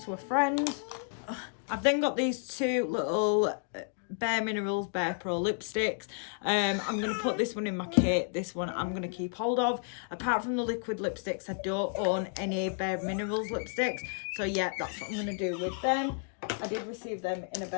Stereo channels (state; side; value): silent; right; 57 dB below the other